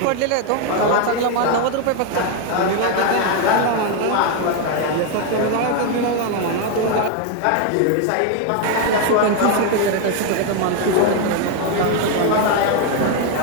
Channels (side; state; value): both; different; correlation 0.01